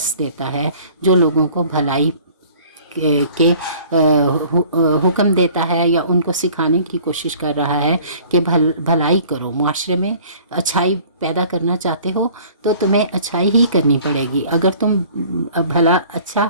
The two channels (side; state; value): both; inverted; correlation -0.51